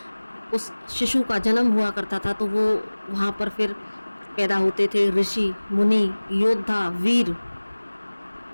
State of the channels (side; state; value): both; inverted; correlation -1.00